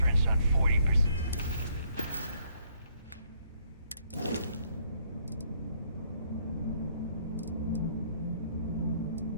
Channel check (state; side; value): inverted; both; correlation -0.67